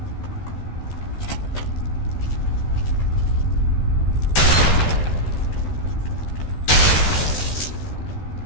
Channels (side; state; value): right; late; 13 ms